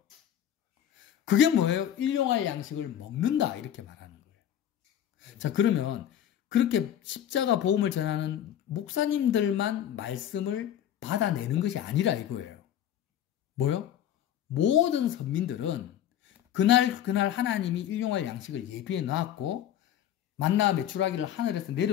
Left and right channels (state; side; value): quieter; right; 10.5 dB